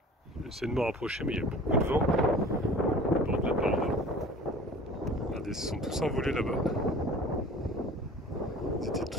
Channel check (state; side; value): normal; both; correlation 0.43